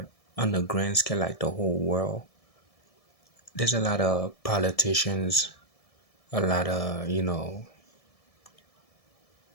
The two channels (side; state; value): right; late; 1.7 ms